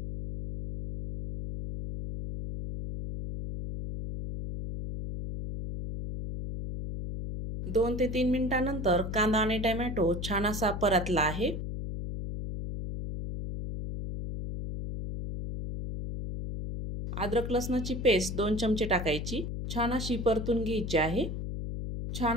दोन ते 3 मिनिटांनंतर कांदा आणि टोमॅटो छान असा परतला आहे. अद्रक लसणाची पेस्ट 2 चमचे टाकायची. छान अशी परतून घ्यायची आहे.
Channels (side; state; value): left; noise; hum, 5 dB below the sound